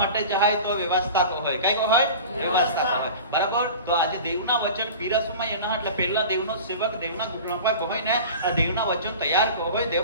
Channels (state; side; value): inverted; both; correlation -0.37